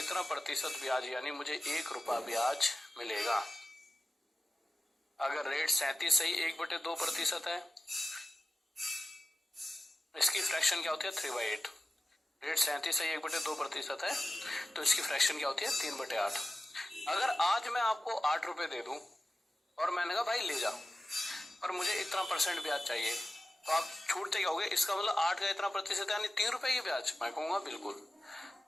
प्रतिशत ब्याज यानी मुझे 1 रुपया ब्याज मिलेगा। अगर रेट 37 सही 1/2% है, इसकी फ्रैक्शन क्या होती है 3/8। रेट 37 सही 1/2% है तो इसकी फ्रैक्शन क्या होती है 3/8। अगर आज मैं आपको 8 रुपए दे दूं और मैंने कहा भाई ले जा और मुझे इतना % ब्याज चाहिए, तो आप छूटते क्या होगे, इसका मतलब 8 का इतना प्रतिशत यानी 3 रुपए की ब्याज। मैं कहूंगा बिल्कुल,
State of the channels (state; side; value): normal; both; correlation 0.94